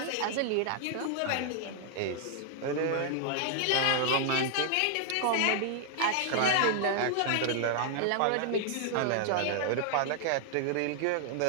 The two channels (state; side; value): different; both; correlation 0.00